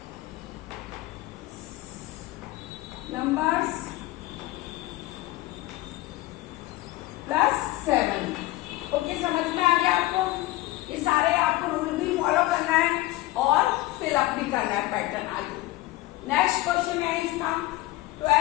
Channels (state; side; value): quieter; right; 18.3 dB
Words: +7। Okay, समझ में आ गया आपको। ये सारे आपको रूल भी फॉलो करना है और फिलअप भी करना है पैटर्न आगे। नेक्स्ट क्वेश्चन है इसका